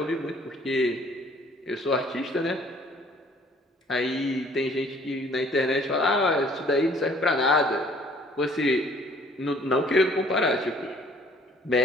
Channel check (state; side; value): normal; both; correlation 0.57